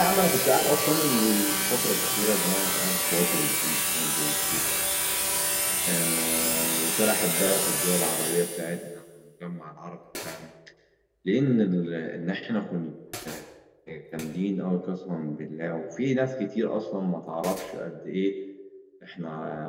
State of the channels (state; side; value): identical; both; correlation 1.00